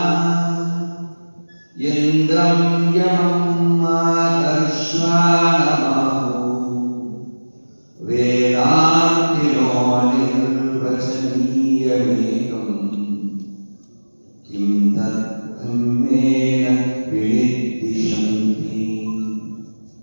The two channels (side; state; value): both; inverted; correlation -1.00